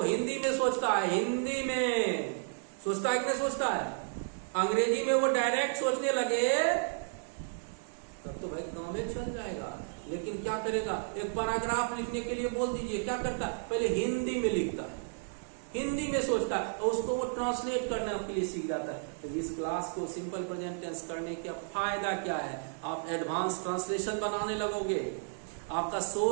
हिंदी में सोचता है, हिंदी में सोचता है कि नहीं सोचता है? अंग्रेजी में वो डायरेक्ट सोचने लगे तब तो भाई गांव में चल जाएगा। लेकिन क्या करेगा? एक पैराग्राफ लिखने के लिए बोल दीजिए, क्या करता है? पहले हिंदी में लिखता है, हिंदी में सोचता है, और उसको वो ट्रांसलेट करने के लिए सीख जाता है। तो इस क्लास को सिंपल प्रेजेंट टेंस करने का फायदा क्या है? आप एडवांस ट्रांसलेशन बनाने लगोगे, आपका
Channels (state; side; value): silent; left; digital silence